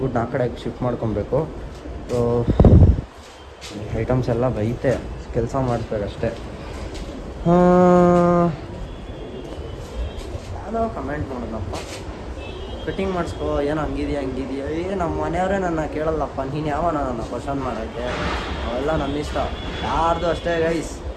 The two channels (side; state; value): both; identical; correlation 1.00